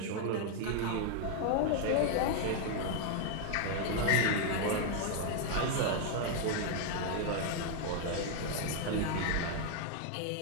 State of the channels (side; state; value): both; different; correlation 0.00